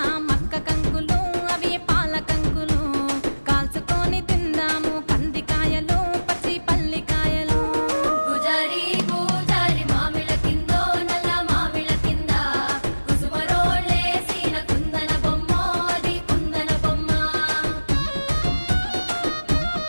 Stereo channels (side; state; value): both; inverted; correlation -1.00